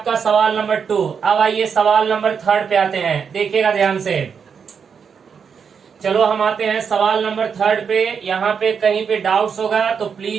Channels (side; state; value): left; quieter; 6.5 dB